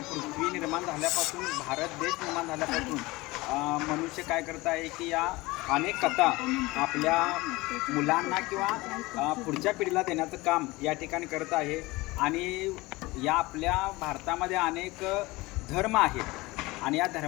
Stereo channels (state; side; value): quieter; right; 21.6 dB